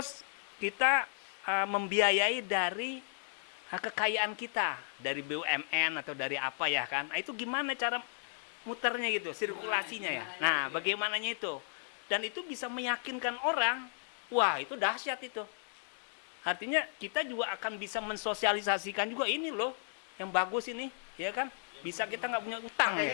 kita membiayai dari kekayaan kita, dari BUMN atau dari apa ya kan. Nah, itu gimana cara muternya gitu, sirkulasinya ya. Gimananya Nah, itu ya. bagaimananya itu. Dan itu bisa meyakinkan orang. Wah, itu dahsyat itu. Artinya kita juga akan bisa mensosialisasikan juga ini loh, yang bagus ini, ya kan? Bisa kita nggak punya utang, Makanya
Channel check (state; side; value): silent; right; digital silence